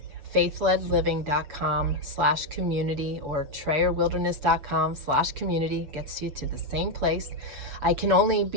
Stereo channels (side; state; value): left; late; 6.9 ms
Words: faithledliving.com/community or trayerwilderness.com/community. Gets you to the same place. I can only